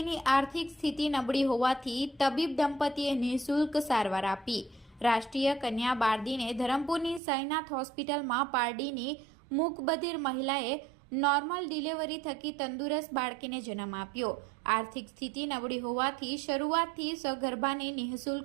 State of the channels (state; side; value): drops out; left; at 7.2 s